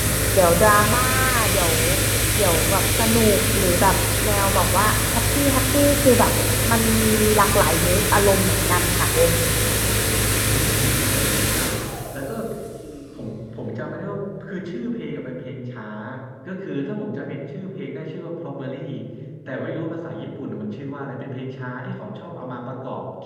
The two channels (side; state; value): both; identical; correlation 1.00